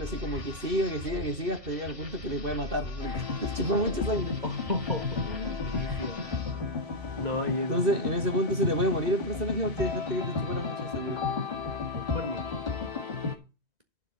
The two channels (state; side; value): late; left; 2.6 ms